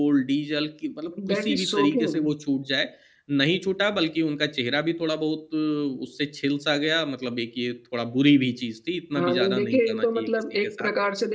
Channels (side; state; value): both; identical; correlation 1.00